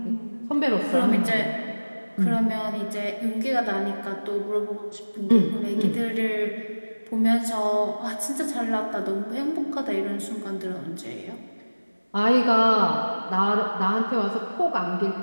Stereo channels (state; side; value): inverted; both; correlation -1.00